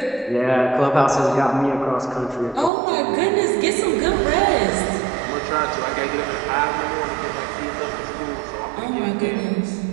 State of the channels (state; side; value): drops out; left; at 2.7 s